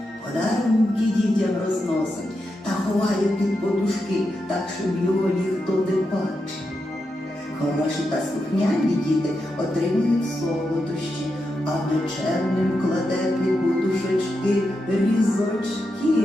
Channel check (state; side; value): normal; both; correlation 0.86